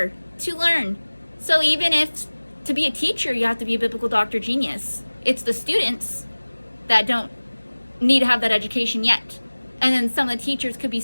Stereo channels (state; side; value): inverted; both; correlation -1.00